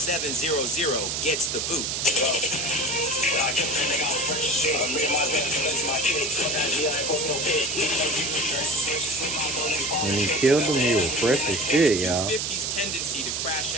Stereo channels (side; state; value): right; noise; hiss, 1 dB below the sound